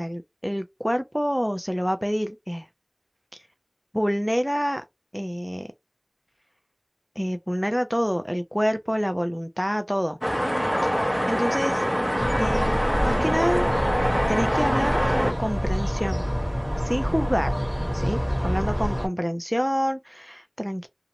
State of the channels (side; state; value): both; identical; correlation 1.00